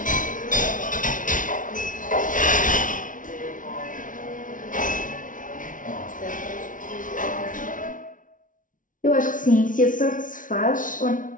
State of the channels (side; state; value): right; late; 0.38 ms